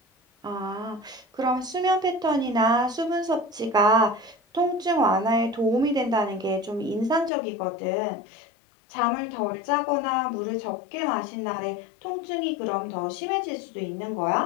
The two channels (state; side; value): drops out; right; at 7.3 s